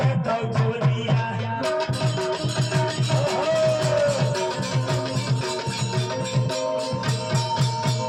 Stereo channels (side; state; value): both; identical; correlation 1.00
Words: दे तो होलिया